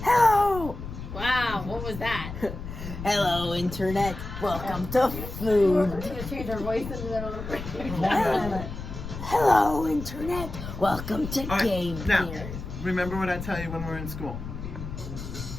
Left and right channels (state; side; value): noise; left; rumble, 9 dB below the sound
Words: Hello. Wow, what was that? Hello, internet. Welcome to food. We're gonna change our voice in the middle of the Hello, internet. Welcome to All right, Game now, Here. remember what I tell you when we're in school.